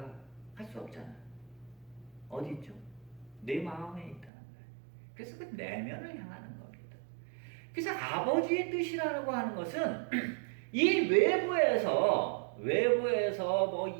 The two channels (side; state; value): left; drops out; at 4.3 s